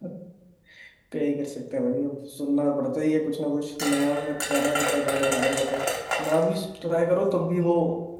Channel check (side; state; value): both; identical; correlation 1.00